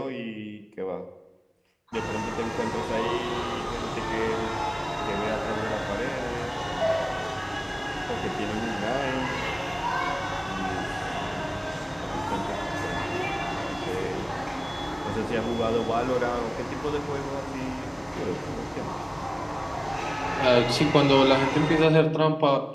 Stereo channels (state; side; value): identical; both; correlation 1.00